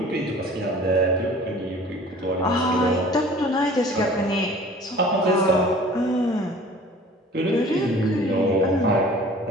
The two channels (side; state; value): both; normal; correlation 0.47